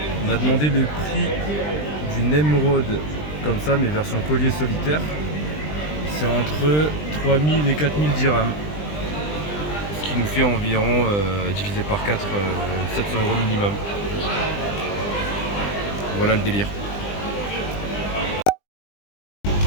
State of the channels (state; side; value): late; right; 20 ms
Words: On a demandé le prix d'une émeraude comme ça mais version collier solitaire. C'est entre 3000 et 4000 dirhams. Ce qui nous fait environ divisé par 4 700 € minimum. Voilà le délire.